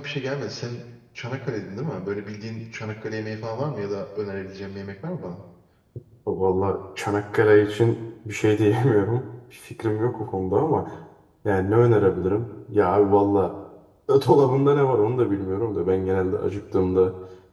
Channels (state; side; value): identical; both; correlation 1.00